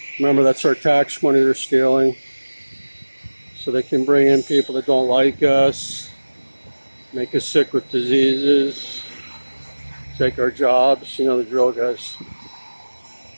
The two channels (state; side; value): inverted; both; correlation -1.00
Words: Remember, that's our tax money they're stealing. So they can bring in people that don't like us, make us sick with diseases, take our jobs. You know the drill, guys.